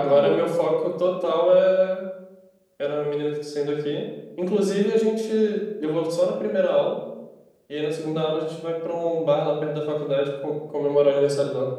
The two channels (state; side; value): identical; both; correlation 1.00